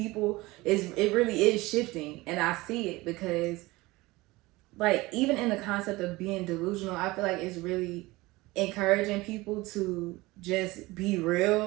it really is shifting, and I see it because like even in the concept of being delusional, I feel like it's really encouraging people to just be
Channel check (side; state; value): left; quieter; 20.8 dB